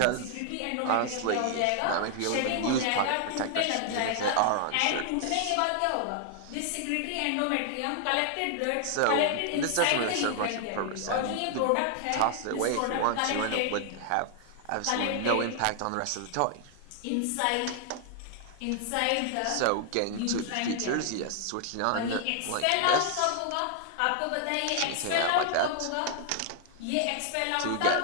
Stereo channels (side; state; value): both; different; correlation 0.00